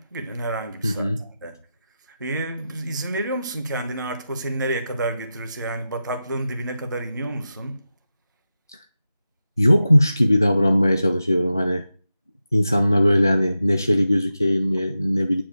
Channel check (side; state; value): both; inverted; correlation -0.91